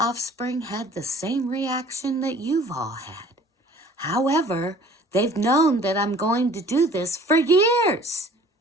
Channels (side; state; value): both; normal; correlation 0.51